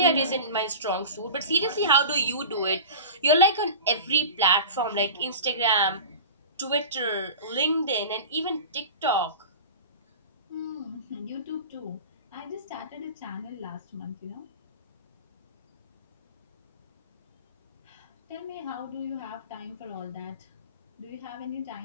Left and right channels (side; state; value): both; inverted; correlation -0.34